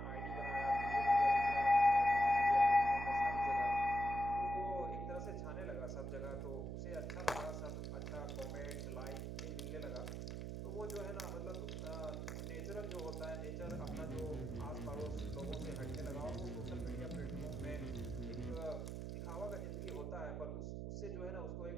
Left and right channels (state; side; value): noise; right; hum, 5 dB below the sound